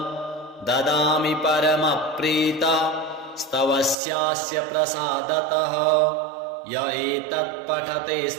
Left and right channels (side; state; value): left; drops out; at 4.0 s